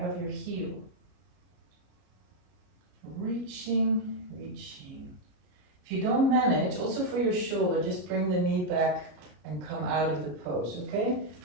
of your heel. Reaching, reaching. If you don't manage, also for your shoulder, just bring the knee back and come out of the pose, okay?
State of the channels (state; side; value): late; left; 33 ms